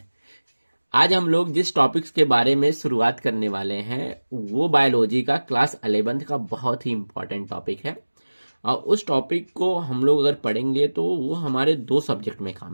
आज हम लोग जिस टॉपिक्स के बारे में शुरुआत करने वाले हैं वो बायोलॉजी का क्लास 11th का बहुत ही इंपॉर्टेंट टॉपिक है। और उस टॉपिक को हम लोग अगर पढ़ेंगे तो वो हमारे दो सब्जेक्ट में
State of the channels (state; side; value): inverted; both; correlation -1.00